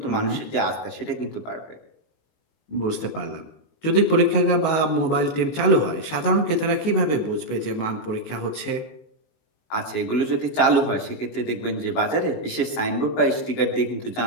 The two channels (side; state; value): right; late; 19 ms